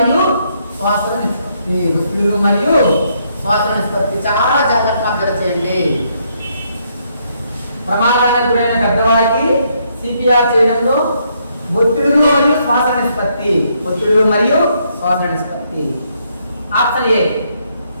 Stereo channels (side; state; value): both; inverted; correlation -0.73